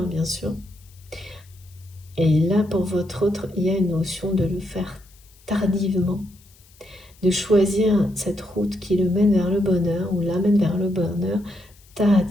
bien sûr. Et là, pour votre autre, il y a une notion de le faire tardivement, de choisir cette route qui le mène vers le bonheur ou l'amène vers le bonheur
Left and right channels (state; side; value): noise; left; hiss, 28 dB below the sound